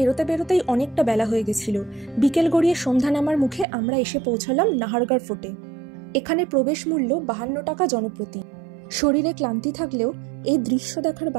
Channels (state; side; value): drops out; left; at 3.7 s